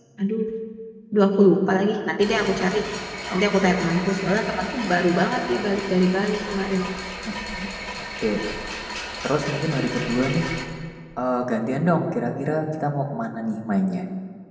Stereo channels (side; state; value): both; identical; correlation 1.00